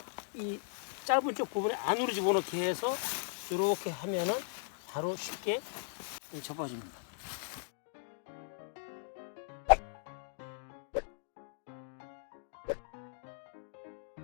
이 짧은 쪽 부분에 안으로 집어넣게 해서 이렇게 하면은 바로 쉽게 접어집니다.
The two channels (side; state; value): right; silent; digital silence